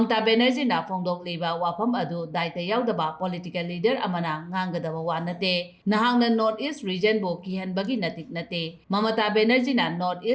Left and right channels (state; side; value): identical; both; correlation 1.00